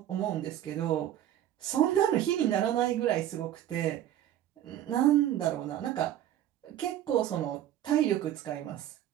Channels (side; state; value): left; quieter; 11.8 dB